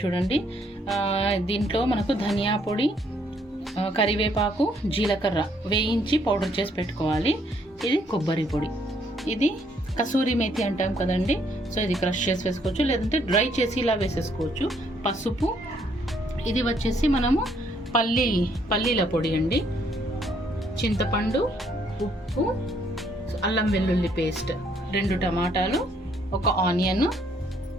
చూడండి. దీంట్లో మనకు ధనియా పొడి, కరివేపాకు, జీలకర్ర వేయించి పౌడర్ చేసి పెట్టుకోవాలి. ఇది కొబ్బరి పొడి, ఇది కసూరి మేతి అంటాం కదండి. సో ఇది క్రష్ చేసి వేసుకోవచ్చు, లేదంటే డ్రై చేసి ఇలా వేసేసుకోవచ్చు. పసుపు, ఇది వచ్చేసి మనము పల్లీల పొడి అండి. చింతపండు, ఉప్పు, అల్లం వెల్లుల్లి పేస్ట్, 2 టమాటాలు, 1 ఆనియన్,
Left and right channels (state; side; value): normal; both; correlation 0.68